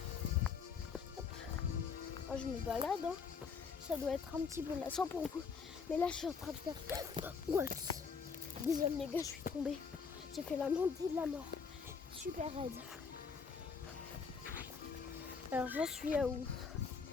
Oh, je me balade, hein. Ça doit être un petit peu lassant pour vous. Mais là je suis en train de faire... Ouais. Désolé les gars, je suis tombée. J'ai fait la montée de la mort. Super raide. Alors j'en suis à où?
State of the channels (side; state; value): right; quieter; 5.7 dB